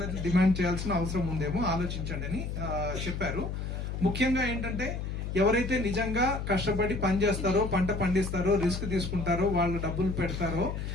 రైతులు డిమాండ్ చేయాల్సిన అవసరం ఉందేమో, ఆలోచించండి అని చెప్పారు. ముఖ్యంగా ఏంటంటే ఎవరైతే నిజంగా కష్టపడి పని చేస్తారో, పంట పండిస్తారో, రిస్క్ తీసుకుంటారో, వాళ్ళు డబ్బులు పెడతారో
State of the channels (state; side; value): noise; left; hum, 4 dB below the sound